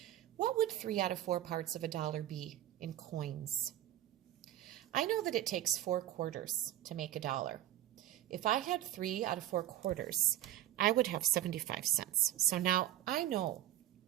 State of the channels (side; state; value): left; quieter; 13.3 dB